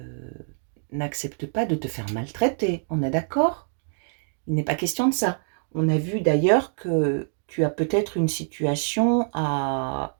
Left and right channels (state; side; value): silent; left; 61 dB below the other